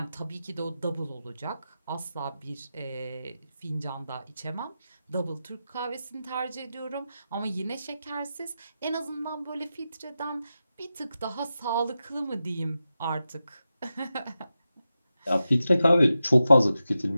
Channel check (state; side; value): inverted; both; correlation -0.91